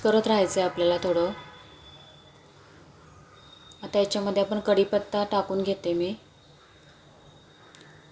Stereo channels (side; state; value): both; identical; correlation 1.00